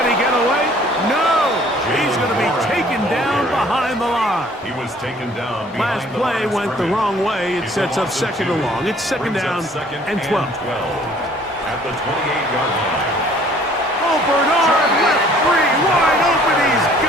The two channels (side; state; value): both; normal; correlation 0.56